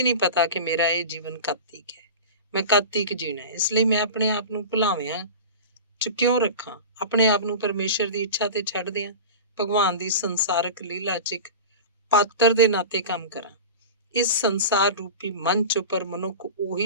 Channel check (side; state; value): both; inverted; correlation -0.30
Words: ਨਹੀਂ ਪਤਾ ਕਿ ਮੇਰਾ ਇਹ ਜੀਵਨ ਕਦ ਤੀਕ ਹੈ, ਮੈਂ ਕਦ ਤੀਕ ਜੀਣਾ ਹੈ। ਇਸ ਲਈ ਮੈਂ ਆਪਣੇ ਆਪ ਨੂੰ ਭੁਲਾਵਿਆਂ 'ਚ ਕਿਉਂ ਰੱਖਾਂ, ਆਪਣੇ ਆਪ ਨੂੰ ਪਰਮੇਸ਼ਰ ਦੀ ਇੱਛਾ ਤੇ ਛੱਡ ਦਿਆਂ, ਭਗਵਾਨ ਦੀ ਸੰਸਾਰਕ ਲੀਲਾ 'ਚ ਇੱਕ ਪਾਤਰ ਦੇ ਨਾਤੇ ਕੰਮ ਕਰਾਂ। ਇਸ ਸੰਸਾਰ ਰੂਪੀ ਮੰਚ ਉੱਪਰ ਮਨੁੱਖ